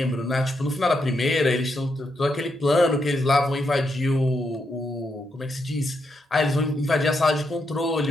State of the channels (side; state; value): both; normal; correlation 0.81